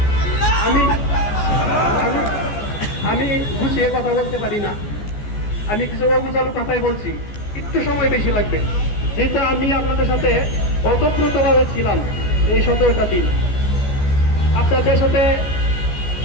আমি আমি আমি গুছিয়ে কথা বলতে পারি না, আমি কিছু অগুছালো কথাই বলছি, একটু সময় বেশি লাগবে, যেটা আমি আপনাদের সাথে অতপ্রতভাবে ছিলাম এই 17টা দিন। আপনাদের সাথে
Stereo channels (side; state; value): right; late; 14 ms